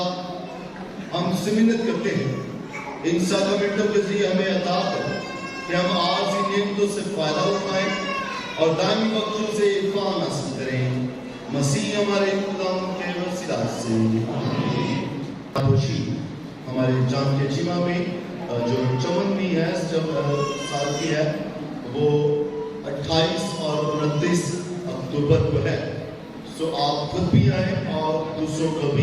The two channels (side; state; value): both; identical; correlation 1.00